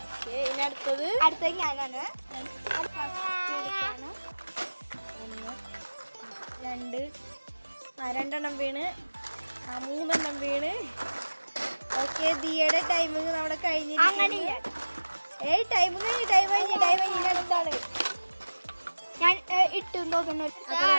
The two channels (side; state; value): both; inverted; correlation -1.00